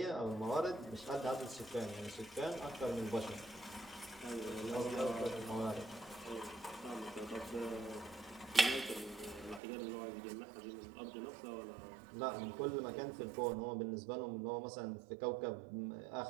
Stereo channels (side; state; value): left; drops out; at 9.6 s